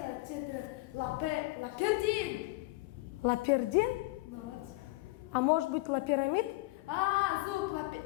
лапердин. Лапердин? Молодец. А может быть лапирамид? Зуб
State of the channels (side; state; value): right; quieter; 21.8 dB